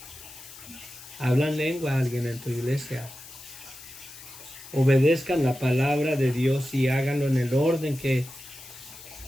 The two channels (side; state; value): left; noise; hiss, 16 dB below the sound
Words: ¿Hablan lengua alguien en tu iglesia? Obedezcan la palabra de Dios y háganlo en el orden que